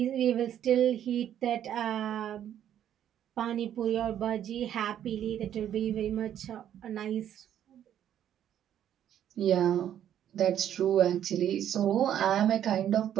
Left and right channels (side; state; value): left; quieter; 10.4 dB